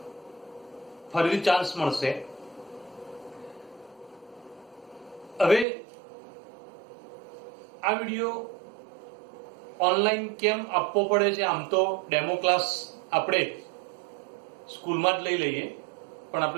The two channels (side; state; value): left; drops out; at 5.7 s